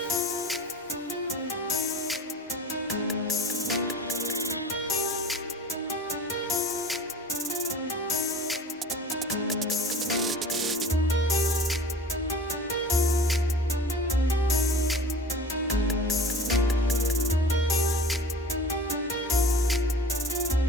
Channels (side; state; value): both; normal; correlation 0.40